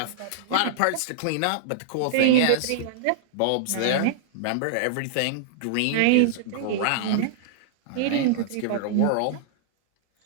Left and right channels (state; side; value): different; both; correlation -0.01